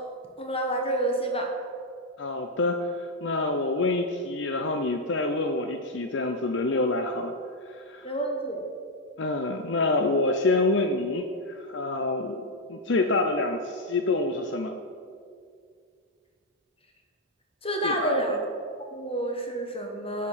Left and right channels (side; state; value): both; normal; correlation 0.00